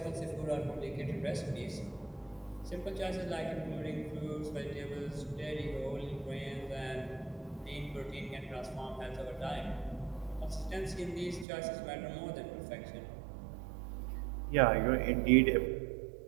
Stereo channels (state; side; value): drops out; left; at 11.5 s